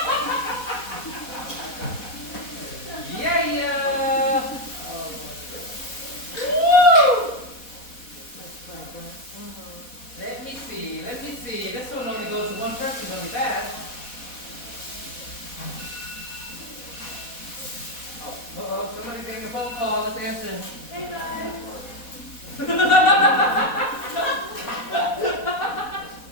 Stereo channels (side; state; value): right; late; 4.1 ms